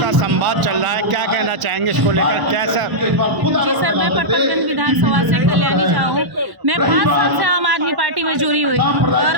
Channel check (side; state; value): left; late; 1.0 ms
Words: संवाद चल रहा है, क्या कहना चाहेंगे इसको लेकर? कैसा? जी सर, मैं पटपरगंज विधानसभा से कल्याणी झा हूँ। मैं 5 साल से आम आदमी पार्टी में जुड़ी हुई